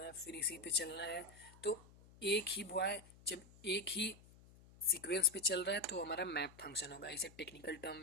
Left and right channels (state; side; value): noise; left; hum, 23 dB below the sound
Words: है, फिर इसी पे चलना है. तो एक ही बॉय जब एक ही सीक्वेंस पे चल रहा है तो हमारा मैप फंक्शन होगा. इसे टेक्निकल टर्म